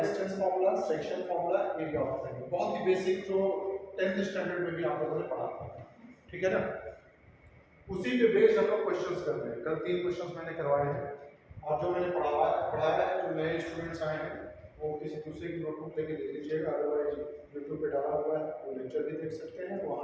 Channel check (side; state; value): both; identical; correlation 1.00